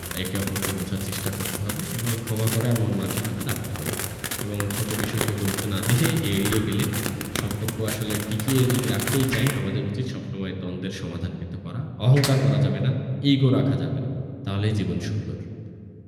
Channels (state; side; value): identical; both; correlation 1.00